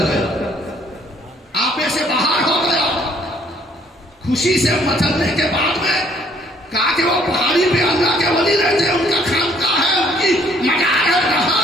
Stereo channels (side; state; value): both; normal; correlation 0.63